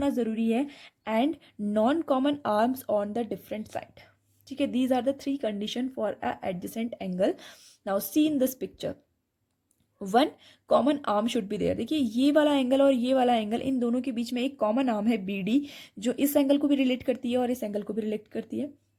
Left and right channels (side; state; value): both; identical; correlation 1.00